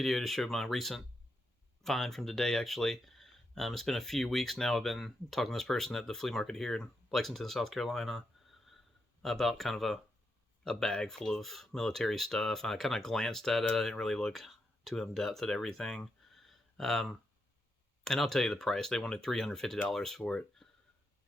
to show my recent find from today. Actually, it's been a few weeks now. I've been talking to this person at the flea market here in Lexington, South Carolina, about kind of a bag full of military stuff. I kind of glanced at it. I didn't really look too in depth at everything. Um, and I'll tell you the price. They wanted $350 for it,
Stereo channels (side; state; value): both; normal; correlation 0.83